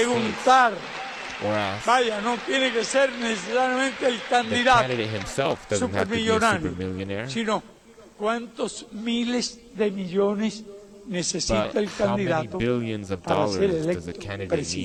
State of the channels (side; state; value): both; identical; correlation 1.00